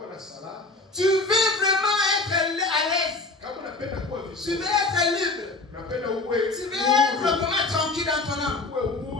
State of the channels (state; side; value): quieter; right; 3.3 dB